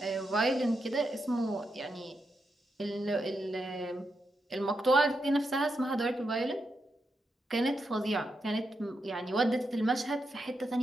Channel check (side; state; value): both; normal; correlation 0.85